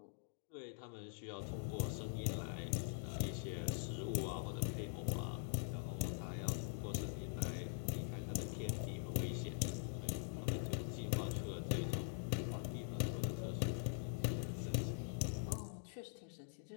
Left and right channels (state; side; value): silent; right; digital silence